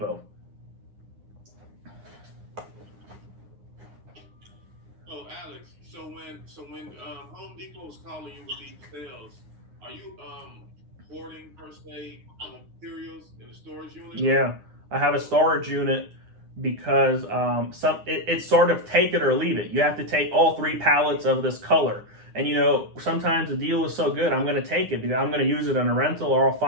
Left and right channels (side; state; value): left; late; 9.7 ms